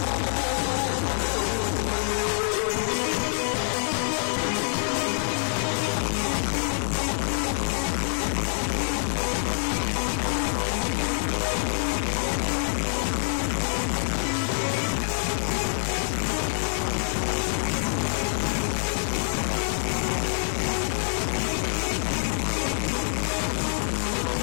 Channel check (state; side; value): silent; right; 55 dB below the other